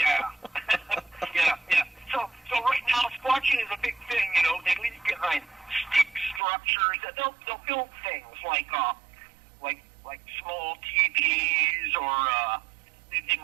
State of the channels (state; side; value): drops out; left; at 6.4 s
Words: yeah. So right now, squatching is a big thing. They leave behind stick structures. They'll build things like small TVs, or they